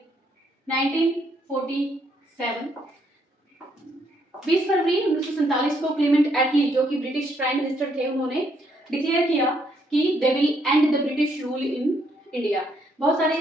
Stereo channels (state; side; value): normal; both; correlation 0.72